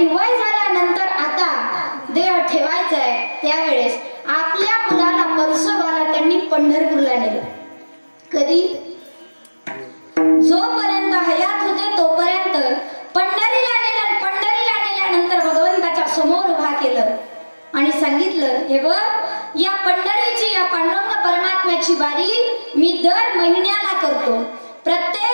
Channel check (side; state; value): both; inverted; correlation -1.00